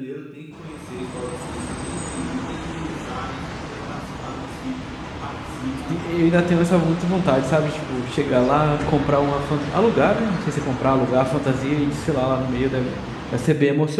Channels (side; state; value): both; identical; correlation 1.00